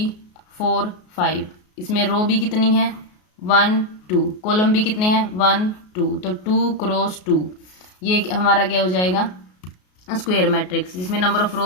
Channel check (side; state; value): right; late; 33 ms